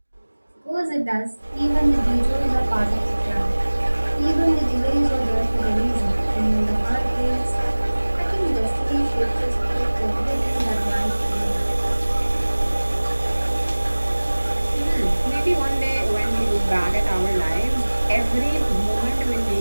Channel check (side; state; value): both; inverted; correlation -1.00